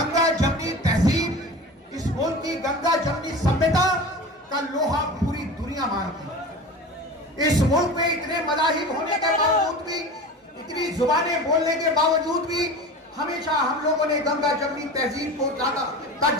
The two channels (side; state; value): both; normal; correlation 0.33